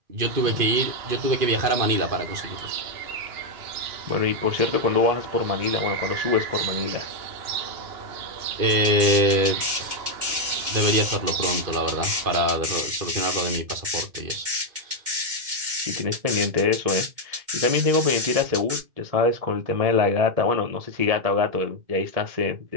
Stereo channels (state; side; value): late; left; 2.1 ms